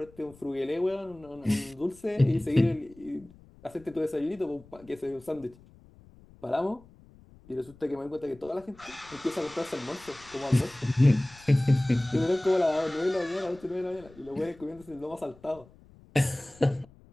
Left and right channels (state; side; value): noise; left; rumble, 24 dB below the sound